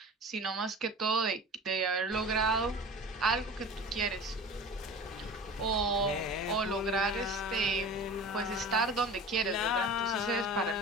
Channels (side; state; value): both; normal; correlation 0.37